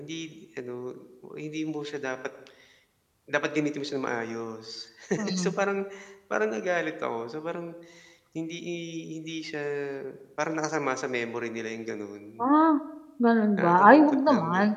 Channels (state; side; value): identical; both; correlation 1.00